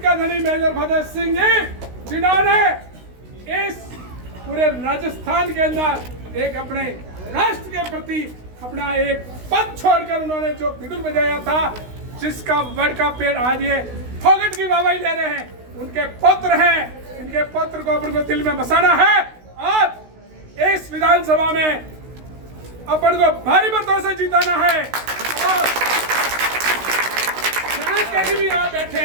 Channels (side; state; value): left; late; 16 ms